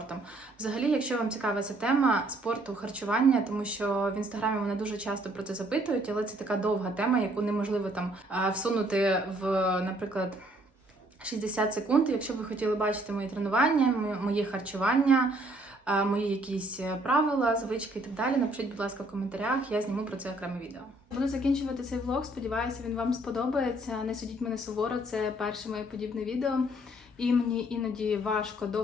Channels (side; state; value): both; normal; correlation 0.64